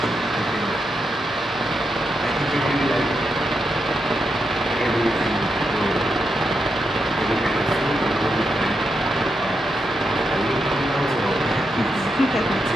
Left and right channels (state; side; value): normal; both; correlation 0.84